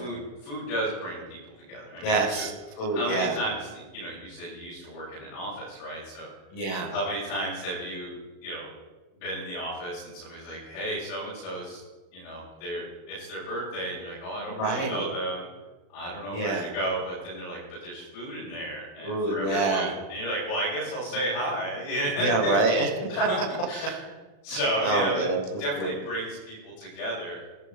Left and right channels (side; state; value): right; late; 37 ms